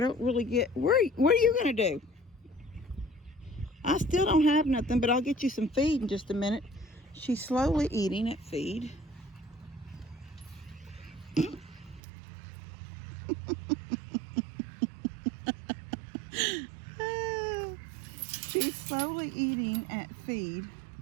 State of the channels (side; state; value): left; drops out; at 12.0 s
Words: really get, what are you going to do? I still don't have nothing, but I'll get you some feed in just a minute. She's slowly eating at feed. She's slowly eating at feed.